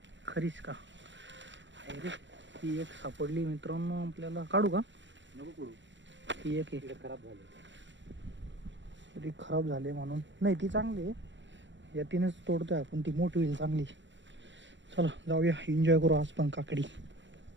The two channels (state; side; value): late; left; 0.53 ms